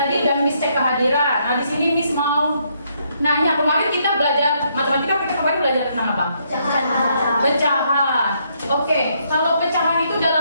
udah Miss cek kehadiran. Nah, di sini Miss mau nanya, kemarin kita belajar matematika, kita kemarin belajar tentang apa? Pecahan. Oke, kalau pecahan itu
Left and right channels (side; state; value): both; inverted; correlation -0.73